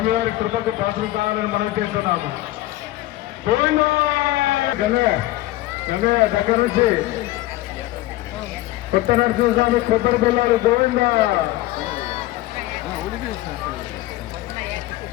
కృపకు పాత్ర కావాలని మనం చేస్తున్నాము. గంగయ్య దగ్గర నుంచి కొత్త నరసింహస్వామి కొబ్బరి పిల్లలు గోవింద.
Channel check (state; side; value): quieter; right; 16.9 dB